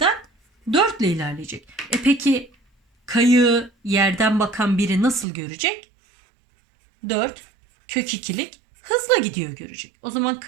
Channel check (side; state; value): left; drops out; at 5.2 s